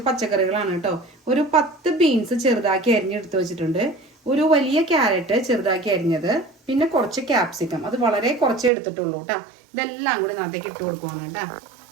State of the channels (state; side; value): drops out; left; at 8.7 s